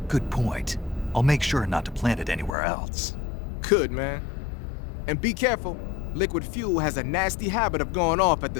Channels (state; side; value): drops out; right; at 2.6 s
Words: Good point. I'll make sure not to plant it anywhere else. Good, man. And be careful. Liquid fuel has a nasty habit of going off at